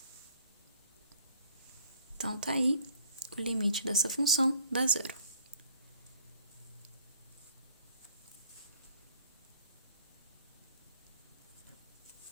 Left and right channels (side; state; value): both; inverted; correlation -0.55